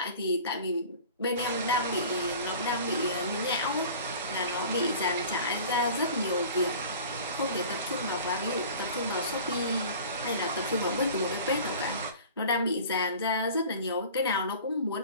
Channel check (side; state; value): both; inverted; correlation -0.42